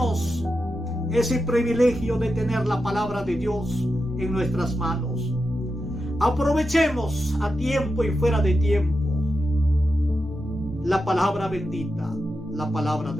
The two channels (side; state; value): both; normal; correlation 0.89